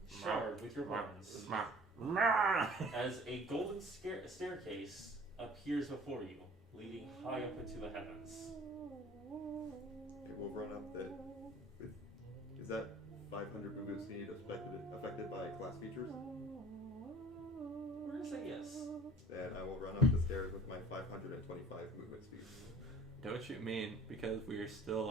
shard with your horns as a golden staircase appears before you, leading high up into the heavens. Okay, we'll run up that. Is that 500 movement speed affected by class features? We're gonna say yes. Then I will run up the stairs with my 525 movement speed. Don't you mean because we're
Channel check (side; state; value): both; normal; correlation 0.48